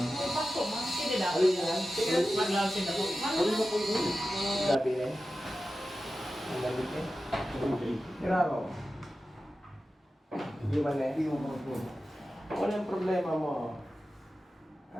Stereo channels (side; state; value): both; normal; correlation 0.93